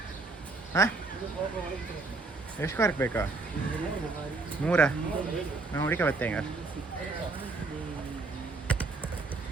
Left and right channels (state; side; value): quieter; left; 3.7 dB